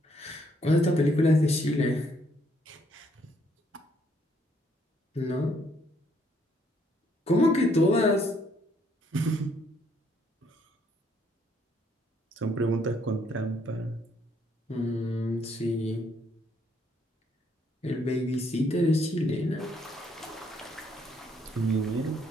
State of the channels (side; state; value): both; normal; correlation 0.69